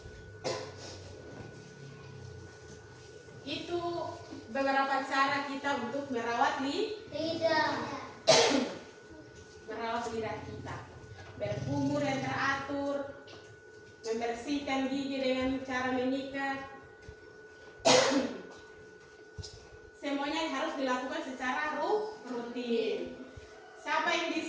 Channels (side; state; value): both; identical; correlation 1.00